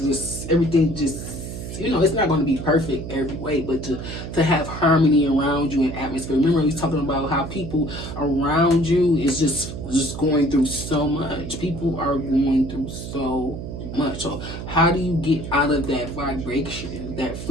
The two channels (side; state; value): right; noise; hum, 8 dB below the sound